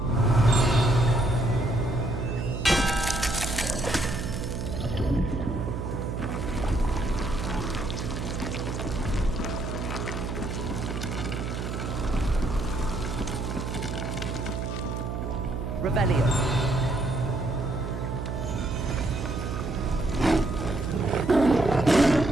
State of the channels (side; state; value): right; noise; hum, 4 dB below the sound